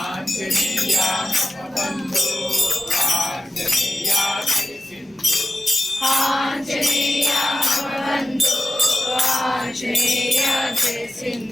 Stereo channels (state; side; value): normal; both; correlation 0.93